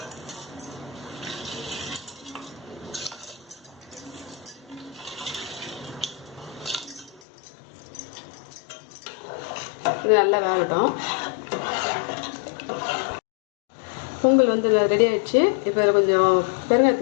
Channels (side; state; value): right; drops out; at 7.2 s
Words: இது நல்லா வேகட்டும். பொங்கல் வந்து ரெடி ஆயிடுச்சு. இப்போ இதில் கொஞ்சம்